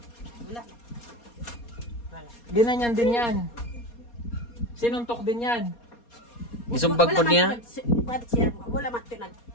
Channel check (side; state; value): right; late; 4.2 ms